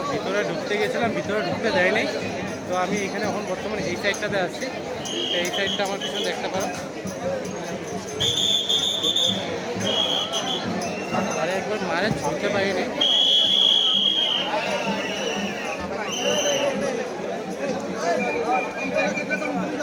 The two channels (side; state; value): both; identical; correlation 1.00